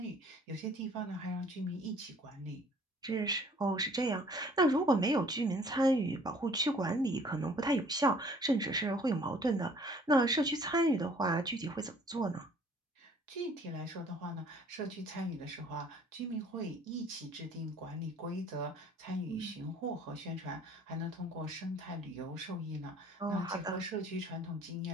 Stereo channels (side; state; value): both; normal; correlation 0.56